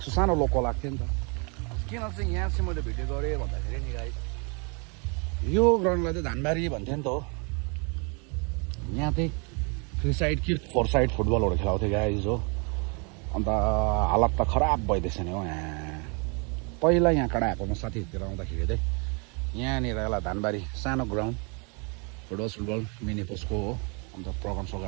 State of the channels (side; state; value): left; quieter; 33.7 dB